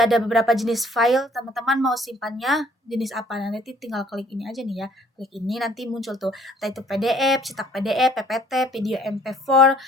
ada beberapa jenis file, teman-teman mau simpannya jenis apa. Nah, nanti tinggal klik ini aja nih ya, klik ini nanti muncul tuh, entah itu PDF, cetak PDF, PPT, video MP4,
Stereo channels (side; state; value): both; normal; correlation 0.59